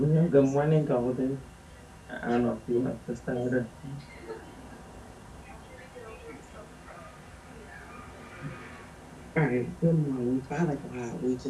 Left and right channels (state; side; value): identical; both; correlation 1.00